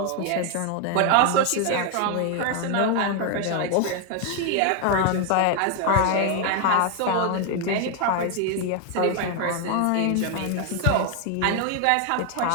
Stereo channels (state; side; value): different; both; correlation 0.01